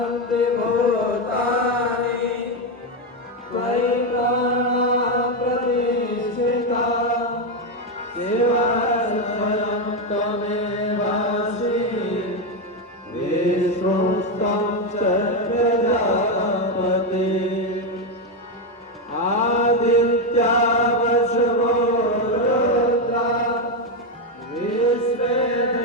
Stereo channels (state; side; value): normal; both; correlation 0.07